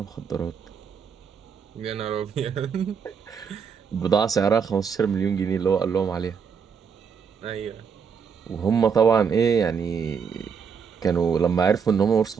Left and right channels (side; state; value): left; quieter; 6.5 dB